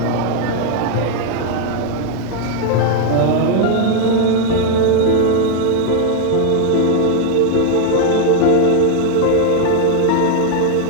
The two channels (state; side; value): different; both; correlation 0.00